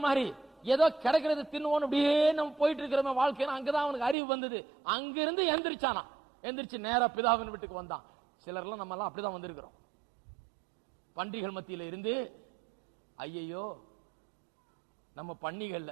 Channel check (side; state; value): left; drops out; at 4.2 s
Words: மாதிரி ஏதோ கிடைக்கிறது தின்னுவோம் அப்படியே நம்ம போயிட்டு இருக்கிற வாழ்க்கையில அங்கதான் அவனுக்கு அறிவு வந்தது. அங்கிருந்து எந்திரிச்சானா, எந்திரிச்சு நேரா பிதாவின் வீட்டுக்கு வந்தான். சிலர்லாம் நம்ம எல்லாம் அப்படிதான் வந்திருக்கிறோம். பண்டிகள் மத்தியில இருந்து ஐயையோ நம்ம